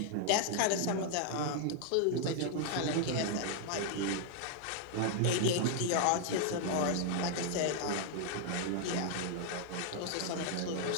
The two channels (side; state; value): both; different; correlation 0.00